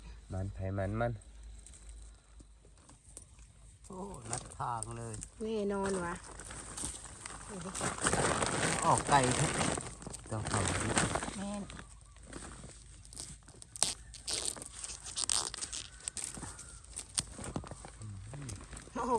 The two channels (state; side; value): identical; both; correlation 1.00